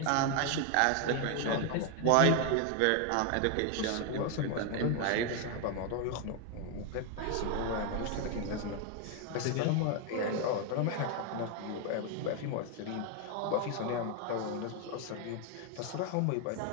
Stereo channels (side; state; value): both; different; correlation 0.01